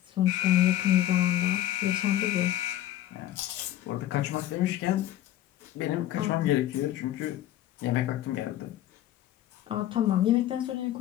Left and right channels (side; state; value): right; quieter; 13.1 dB